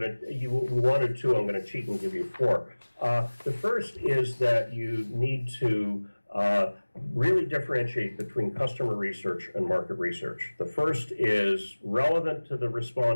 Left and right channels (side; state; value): both; inverted; correlation -1.00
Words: you wanted 2, I'm going to cheat and give you 4. The first is that you need to really differentiate between customer research and market research. The first is relevant to the